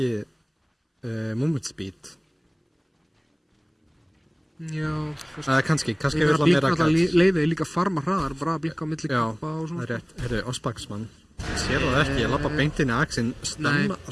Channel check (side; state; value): both; identical; correlation 1.00